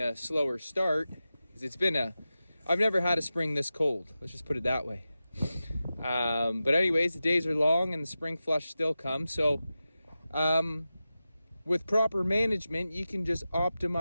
slower start, because I've never had a spring this cold. Let's just put it that way. But anyways, the days are long and the spring flush still comes. So with proper management, you can just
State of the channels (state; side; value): inverted; both; correlation -0.93